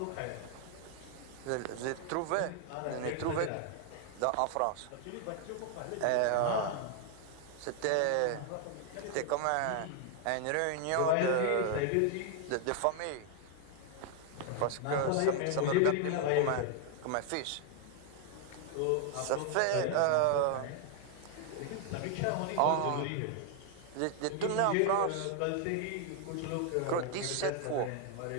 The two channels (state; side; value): different; both; correlation 0.00